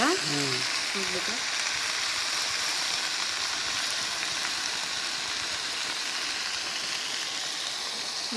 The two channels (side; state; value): both; identical; correlation 1.00